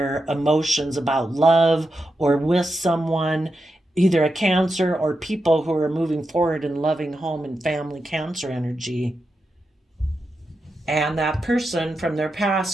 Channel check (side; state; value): both; normal; correlation 0.88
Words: emotions about love or with someone, either a Cancer or people who are moving forward in loving home and family Cancer energy. And that person from their